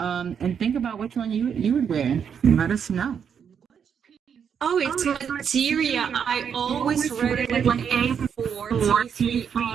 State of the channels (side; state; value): left; quieter; 7.5 dB